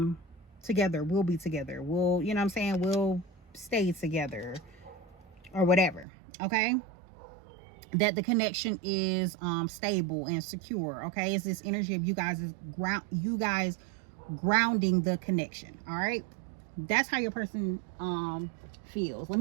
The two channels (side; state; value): left; drops out; at 6.1 s